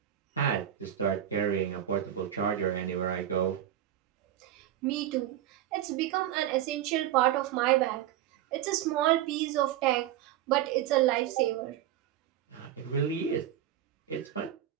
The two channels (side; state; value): left; quieter; 11.6 dB